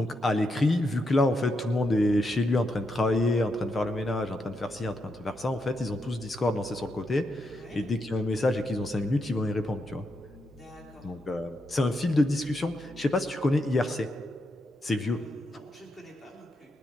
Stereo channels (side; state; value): both; normal; correlation 0.82